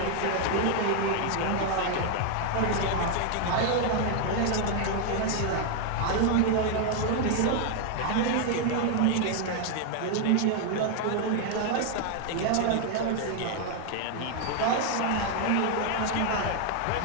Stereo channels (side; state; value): both; different; correlation 0.00